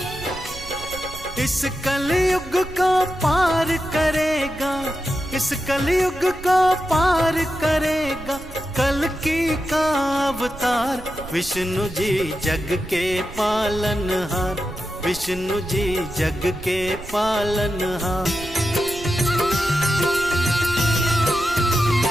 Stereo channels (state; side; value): noise; right; rumble, 15 dB below the sound